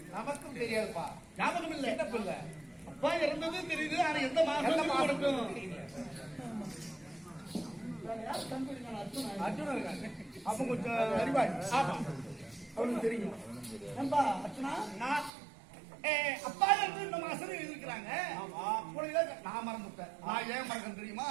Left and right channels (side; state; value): left; drops out; at 15.3 s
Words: நமக்கும் தெரியாதுப்பா, ஞாபகம் இல்லை. அப்பா இறந்தது தெரியுது, ஆனா எந்த மாசம் அப்ப கொஞ்சம் அறிவாய் அவனுக்கு தெரியும். அப்பா இருந்து இந்த மாசம் இருக்கிறாங்க. நான் மறந்துட்டேன். நான் ஏன் மறக்கணும் தெரியுமா?